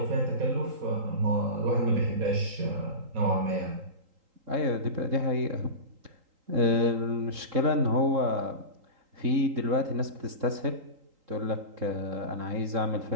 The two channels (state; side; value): late; left; 3.8 ms